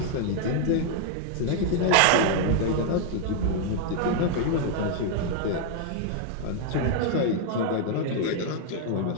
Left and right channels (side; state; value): both; different; correlation -0.01